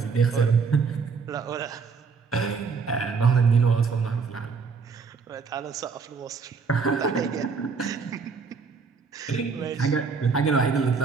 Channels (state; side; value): quieter; left; 5.2 dB